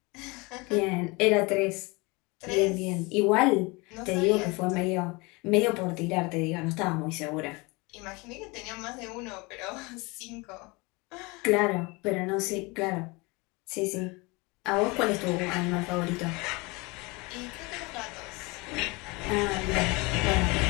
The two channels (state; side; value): quieter; right; 26.2 dB